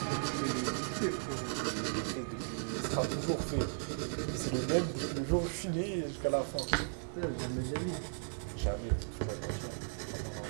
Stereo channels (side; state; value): left; silent; 54 dB below the other